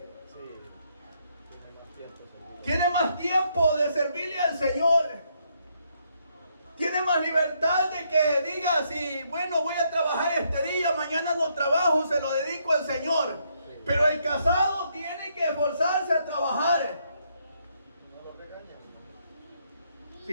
Tiene más tiempo de servirle al Señor. Tiene más libertad de que diga, si bueno, voy a trabajar este día, mañana no trabajo, se lo dedico al Señor. Pero el casado tiene que esforzarse a trabajar.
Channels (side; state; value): both; inverted; correlation -0.74